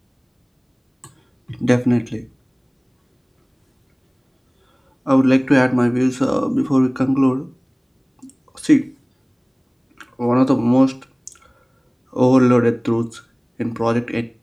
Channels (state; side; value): identical; both; correlation 1.00